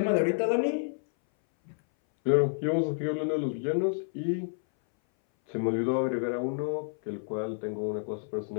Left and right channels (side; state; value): right; silent; 58 dB below the other